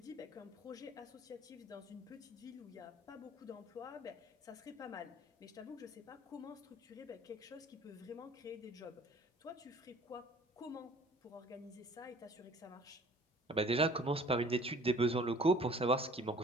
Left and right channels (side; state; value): both; normal; correlation 0.50